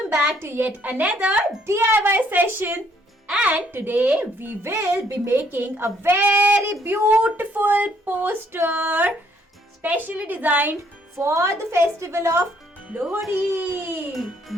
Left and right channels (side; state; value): both; normal; correlation 0.67